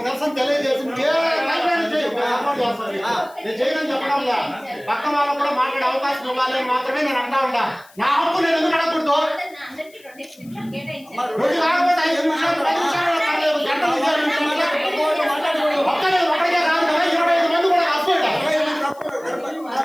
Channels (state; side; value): noise; left; hiss, 27 dB below the sound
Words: నిరసన తెలియజేసి ఏ రైల్వేని చేయి, నేను సపోర్ట్ చేస్తాను. నేను చేయని చెప్పడంలా పక్క వాళ్ళకు కూడా మాట్లాడే అవకాశం ఇవ్వాలి మాత్రమే నేను అంటా ఉంటా. నా హక్కు నేను ఎందుకు అడగకూడదు? రోజు కాకపోతే 5 నిమిషాలు 10 నిమిషాలు పర్లేదు, గంటలు ఒక్కడికే కాదు కదా, 25 మంది కూడా రాసుకోండి.